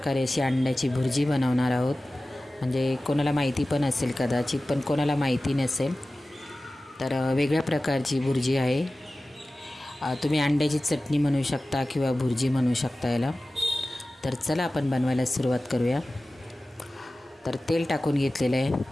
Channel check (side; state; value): both; normal; correlation 0.96